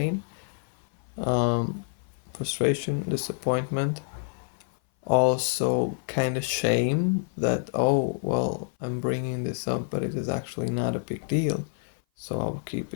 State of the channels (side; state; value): right; silent; 57 dB below the other